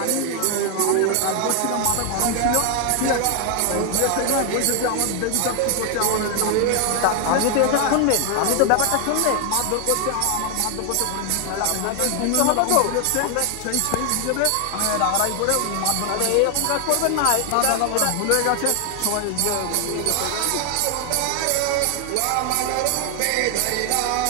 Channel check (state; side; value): different; both; correlation 0.00